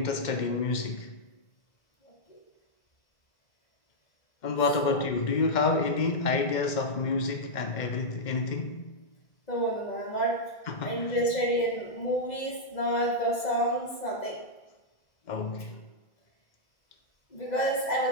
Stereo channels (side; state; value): right; late; 2.0 ms